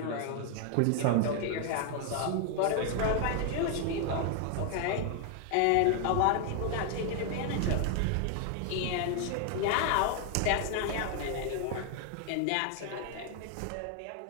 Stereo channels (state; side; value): different; both; correlation 0.00